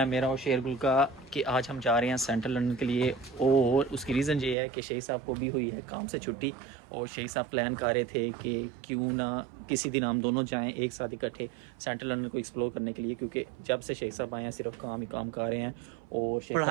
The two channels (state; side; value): drops out; left; at 4.5 s